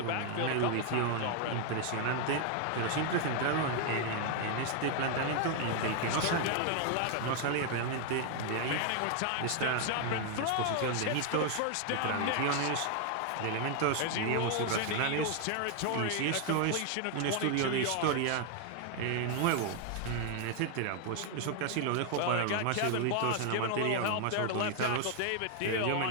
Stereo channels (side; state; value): both; different; correlation 0.00